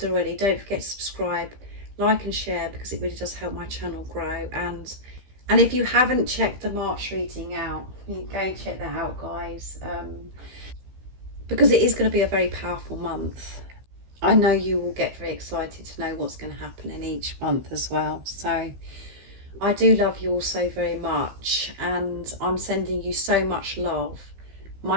already, don't forget to subscribe, like and share, because it really does help my channel grow. And if you haven't checked the March reading out, you go and check that out, guys, because it is going to be a very powerful month. I know you will get very excited to know what's going to happen in each month as well. So I do love you all so very much, and I'm sending you so much love,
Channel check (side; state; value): left; late; 15 ms